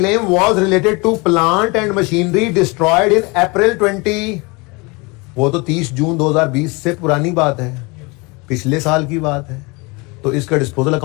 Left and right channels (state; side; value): quieter; right; 27.2 dB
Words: was related to plant and machinery destroyed in April 20, वो तो 30 जून 2020 से पुरानी बात है, पिछले साल की बात है। तो इसका डिस्पोजल